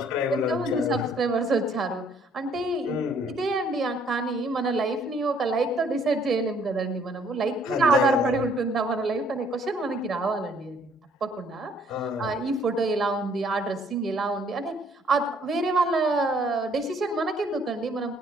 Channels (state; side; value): normal; both; correlation 0.62